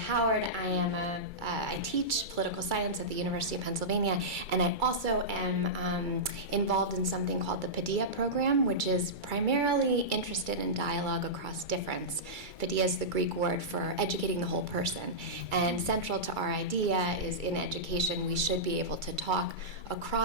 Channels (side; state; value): left; late; 2.3 ms